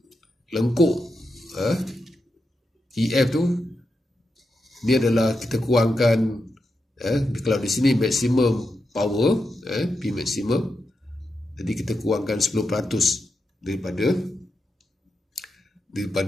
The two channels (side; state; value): both; normal; correlation 0.87